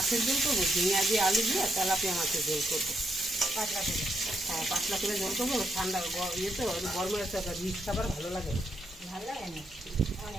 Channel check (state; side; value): normal; both; correlation 0.78